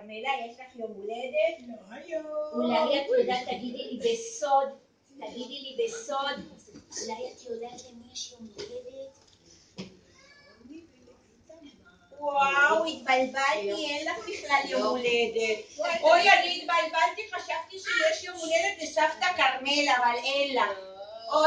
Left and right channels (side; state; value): both; identical; correlation 1.00